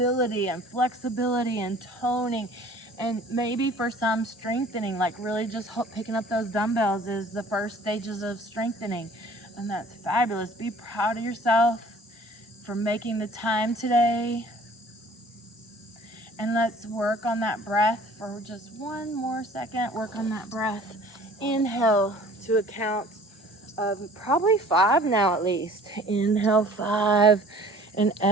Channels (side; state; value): both; normal; correlation 0.50